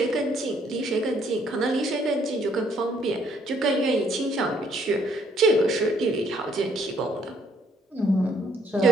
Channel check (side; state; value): both; normal; correlation 0.67